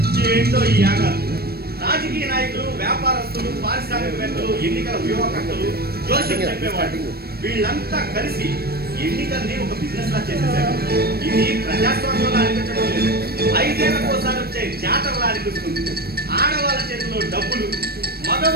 ఏంటో ఈ యాగాలు. రాజకీయ నాయకులు, వ్యాపారస్తులు, పారిశ్రామికవేత్తలు, ఎన్నికల వ్యూహకర్తలు, జోస్యం చెప్పేవాళ్ళు వీళ్ళంతా కలిసి ఎన్నికల్ని ఒక బిజినెస్ లా చేసేసారు. ఇది ప్రజాస్వామ్యంలో అనిపించడం లేదు, 5 ఏళ్లకోసారి వచ్చే జాతరలా అనిపిస్తుంది. ఆడవాళ్ళ చేతిలో డబ్బులు,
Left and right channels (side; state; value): left; late; 0.46 ms